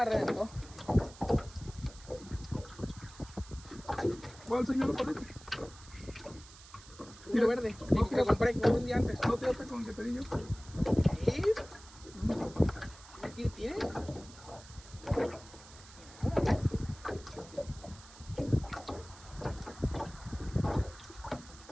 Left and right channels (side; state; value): right; noise; hiss, 19 dB below the sound